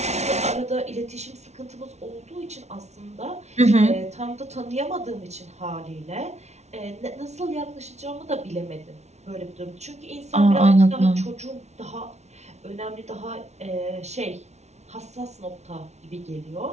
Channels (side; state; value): left; late; 0.32 ms